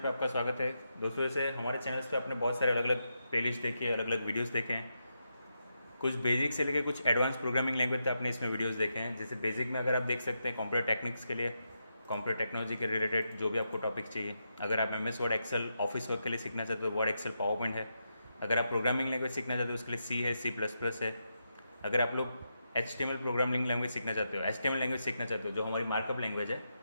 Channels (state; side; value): inverted; both; correlation -0.84